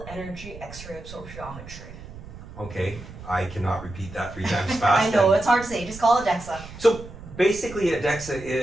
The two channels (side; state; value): right; noise; rumble, 14 dB below the sound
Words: Energy X-ray Absorptiometry. Okay, I cannot repeat that 3 times fast. I know, it's hard to say, just call it DEXA. So basically a DEXA